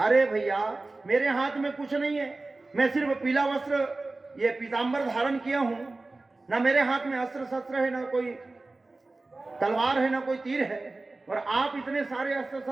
भैया मेरे हाथ में कुछ नहीं है, मैं सिर्फ पीला वस्त्र ये पीतांबर धारण किया हूं, ना मेरे हाथ में अस्त्र शस्त्र है, ना कोई तलवार है, ना कोई तीर है, और आप इतने सारे अस्त्र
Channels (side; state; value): left; quieter; 3.2 dB